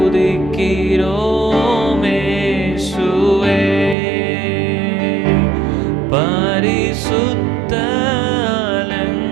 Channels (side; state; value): left; drops out; at 4.0 s